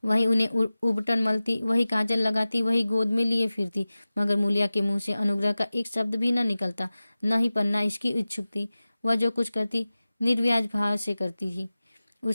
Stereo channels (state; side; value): inverted; both; correlation -0.96